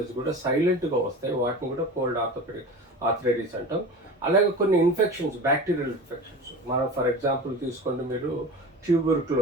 కూడా సైలెంట్గా వస్తాయి, వాటిని కూడా కోల్డ్ ఆర్థరైటిస్ అంటాం. అలాగే కొన్ని ఇన్ఫెక్షన్స్, బ్యాక్టీరియల్ ఇన్ఫెక్షన్స్, మనం ఫర్ ఎగ్జాంపుల్ తీసుకోండి మీరు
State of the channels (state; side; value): normal; both; correlation 0.34